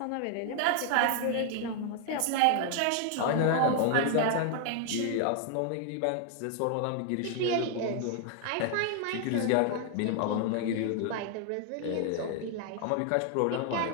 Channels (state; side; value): different; both; correlation 0.00